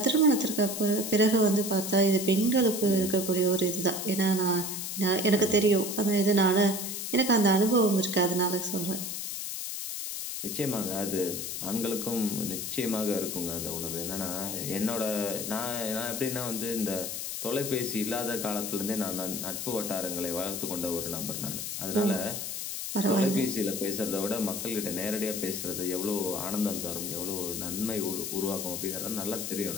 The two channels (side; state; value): left; noise; hiss, 4 dB below the sound